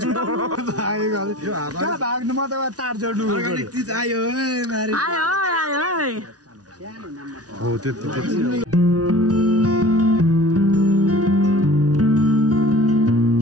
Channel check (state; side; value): late; left; 0.68 ms